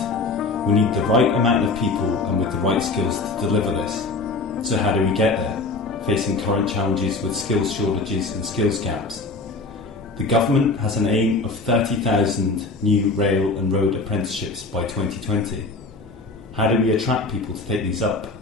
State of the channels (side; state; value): right; quieter; 3.6 dB